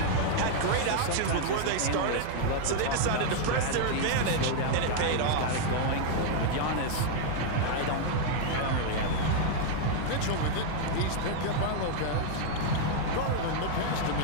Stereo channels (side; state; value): both; different; correlation 0.00